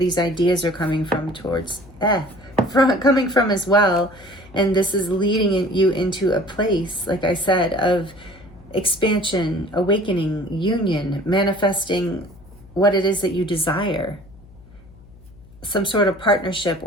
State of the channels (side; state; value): left; noise; hum, 23 dB below the sound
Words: ideas are coming from coming from as well. And this is leading you into a place, like I said, of expansion, awakening, union, manifesting what it is that you desire. Some sort of partnership